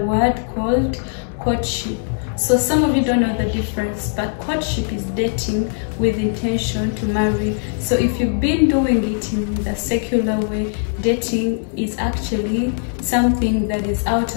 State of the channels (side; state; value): right; silent; digital silence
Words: called courtship. So some of you don't know the difference, but courtship is dating with intention to marry. So if you've been doing it in the secular way, dating is actually something that is out